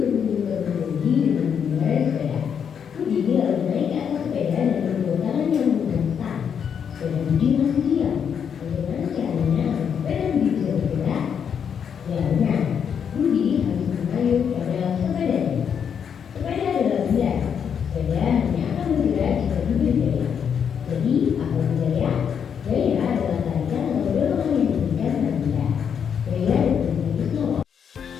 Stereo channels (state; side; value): quieter; right; 7.5 dB